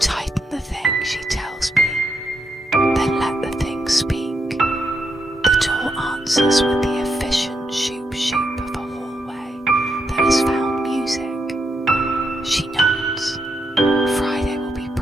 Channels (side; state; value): both; normal; correlation 0.81